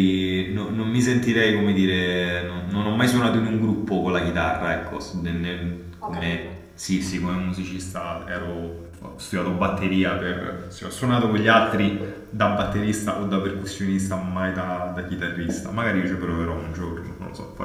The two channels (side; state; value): both; identical; correlation 1.00